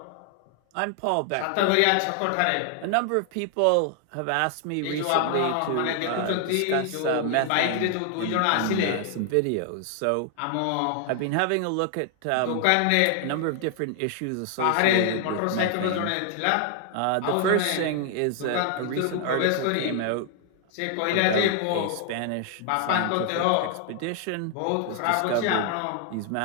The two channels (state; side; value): different; both; correlation 0.00